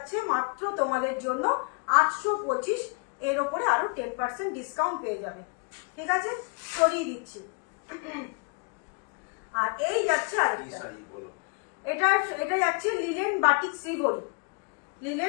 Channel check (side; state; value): right; quieter; 35.6 dB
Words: মাত্র তোমাদের জন্য 825, এর ওপরে আরো 10% ডিসকাউন্ট পেয়ে যাবে, ঠিক আছে, সরিয়ে দিচ্ছি। আর এই যাচ্ছে আরেকটা, এটা এটা যাচ্ছে লিলেন বাটিক শ্রীভরি,